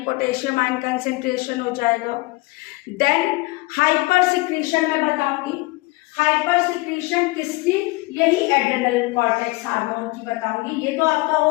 पोटेशियम आयन कंसेंट्रेशन हो जाएगा। देन हाइपर सिक्रीशन मैं बताऊंगी, हाइपर सिक्रीशन किसकी, यही एड्रेनल कॉर्टेक्स हार्मोन की बताऊंगी। ये तो आपका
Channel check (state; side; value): quieter; right; 22.7 dB